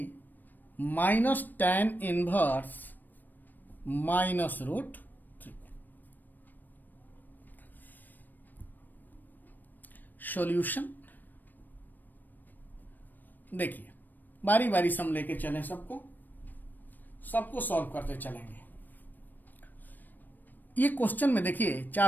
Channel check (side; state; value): right; late; 0.089 ms